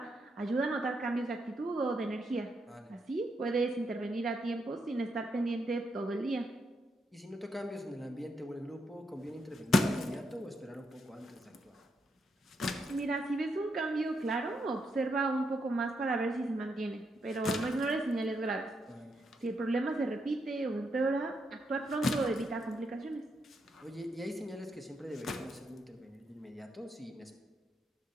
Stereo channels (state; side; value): normal; both; correlation 0.80